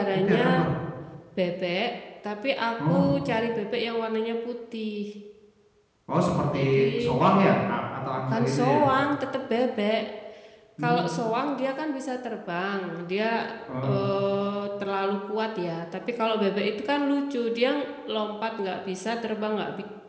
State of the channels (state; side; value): identical; both; correlation 1.00